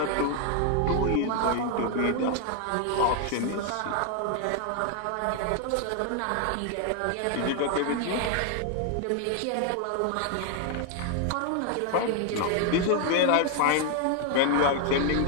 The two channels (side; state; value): both; different; correlation 0.00